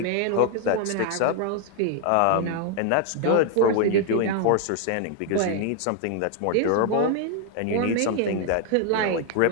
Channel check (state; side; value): different; both; correlation 0.00